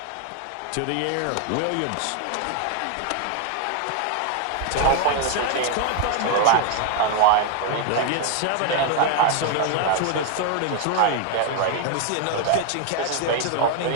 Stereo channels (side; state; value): both; different; correlation 0.00